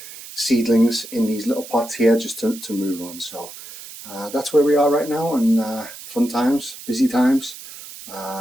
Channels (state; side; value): noise; right; hiss, 14 dB below the sound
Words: seedlings in these little pots here just to move on. So that's where we are right now, and fun times, busy times,